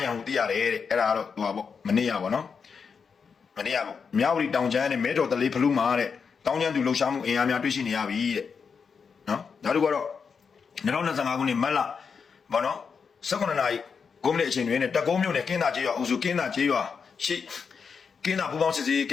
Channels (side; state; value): right; quieter; 5.9 dB